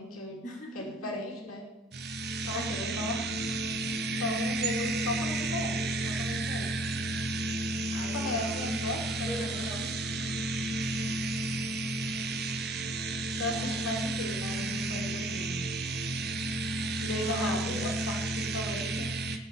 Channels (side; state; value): both; normal; correlation 0.54